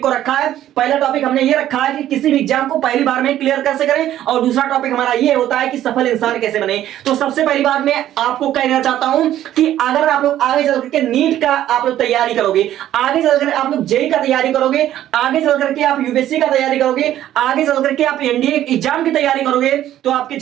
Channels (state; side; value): quieter; left; 12.4 dB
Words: को रखा है। पहला टॉपिक हमने ये रखा है कि किसी भी एग्जाम को पहली बार में क्लियर कैसे करें, और दूसरा टॉपिक हमारा ये होता है कि सफल इंसान कैसे बने। तो सबसे पहली बात मैं आपको कहना चाहता हूं कि अगर आप लोग आगे चल करके नीट का आप लोग तैयारी करोगे, आगे चलकर आप लोग जेईई का तैयारी करोगे, आगे चल करके आप यूपीएससी का तैयारी करोगे, आगे चल करके आप एनडीए एग्जाम की तैयारी करोगे, तो आपकी